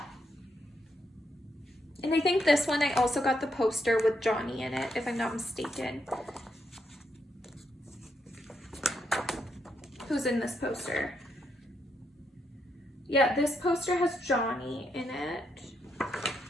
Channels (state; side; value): normal; both; correlation 0.79